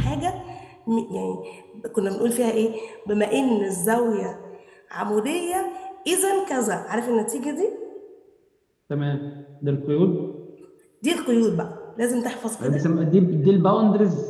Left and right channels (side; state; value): both; identical; correlation 1.00